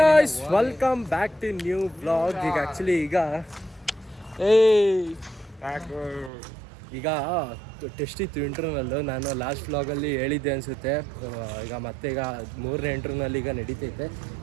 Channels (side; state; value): left; drops out; at 6.3 s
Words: guys, welcome back to new vlog. ಈಗ actually ಈಗ test ಇತ್ತು ಇಂಟರ್ನಲ್. ನಾನು ಲಾಸ್ಟ್ ವ್ಲಾಗಲ್ಲಿ ಹೇಳಿದ್ದೆ ಅನಿಸುತ್ತೆ. ಈಗ ಮೂರನೇ ಇಂಟರ್ನಲ್ ಈಗ ನಡೀತೈತೆ.